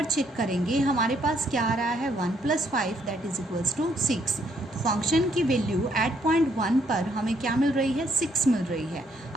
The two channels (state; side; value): normal; both; correlation 0.70